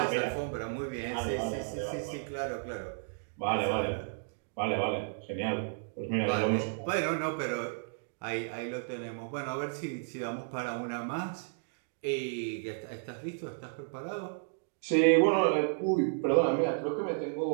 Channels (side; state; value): left; silent; digital silence